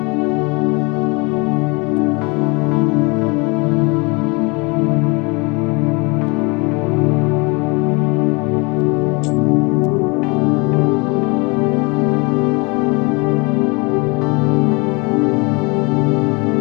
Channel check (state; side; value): quieter; right; 28.9 dB